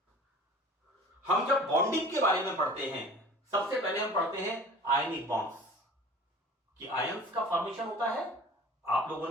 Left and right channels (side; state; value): both; normal; correlation 0.43